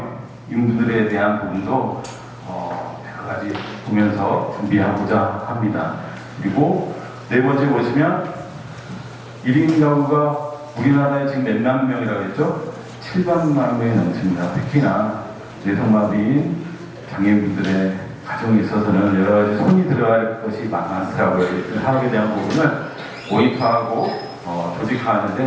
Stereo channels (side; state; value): both; identical; correlation 1.00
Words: 인분들에 대한 부분도 여러 가지 보면서 준비하고자 합니다. 그리고 네 번째 보시면 1인 가구가 우리나라에 지금 몇만 명이라고 했죠? 700만 명이 넘습니다. 특히나 뇌성마비인 장애인분들의 가정에 있어서는 여러 가지 손이 들어갈 것이 많더라고요. 사업에 대한 부분을 모니터하고